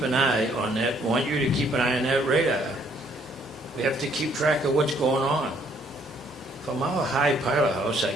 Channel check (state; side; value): normal; both; correlation 0.65